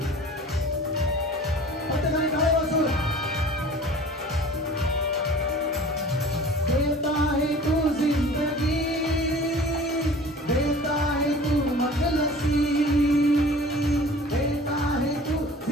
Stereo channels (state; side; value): normal; both; correlation 0.44